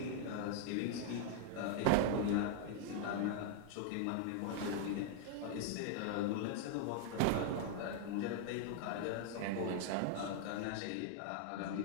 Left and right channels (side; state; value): both; different; correlation 0.00